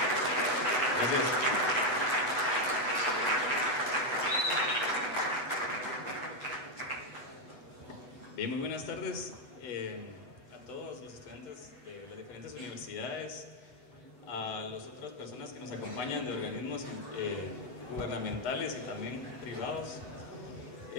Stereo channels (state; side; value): late; right; 8.0 ms